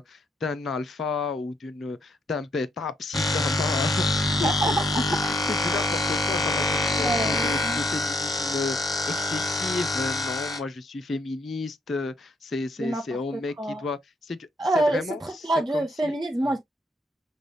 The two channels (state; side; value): normal; both; correlation 0.72